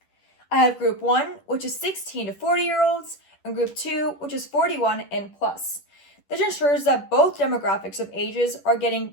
I have group 1, which is 16 to 40-year-olds, and group 2, which is 41 and plus. This ensures that both demographics of ages are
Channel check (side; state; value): right; late; 10 ms